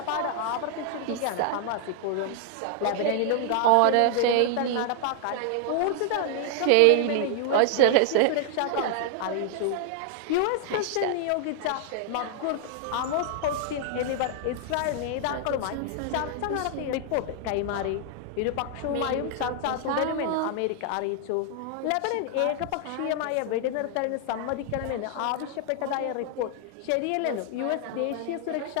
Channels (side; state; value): both; different; correlation 0.00